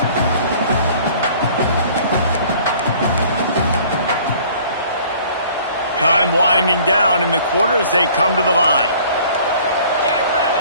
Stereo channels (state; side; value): inverted; both; correlation -0.52